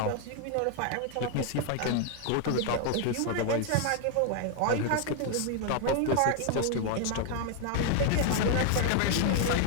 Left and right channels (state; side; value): different; both; correlation 0.00